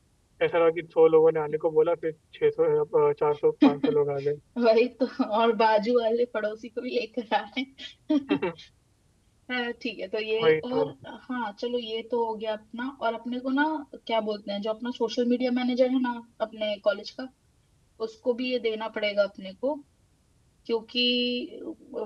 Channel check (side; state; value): both; identical; correlation 1.00